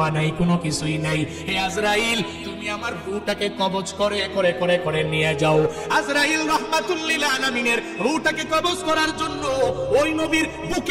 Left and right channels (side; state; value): both; identical; correlation 1.00